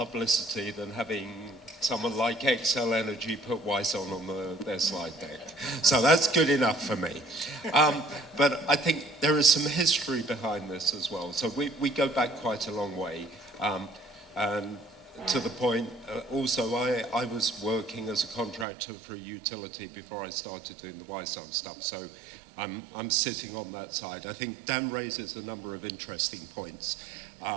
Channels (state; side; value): drops out; left; at 18.7 s